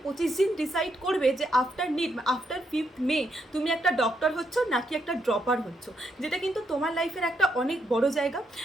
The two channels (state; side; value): normal; both; correlation 0.78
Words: 25 দিন ডিসাইড করবে যে আফটার নিট, আফটার 5th মে তুমি একটা ডক্টর হচ্ছ নাকি একটা ড্রপার হচ্ছ, যেটা কিন্তু তোমার লাইফের একটা অনেক বড় জায়গা।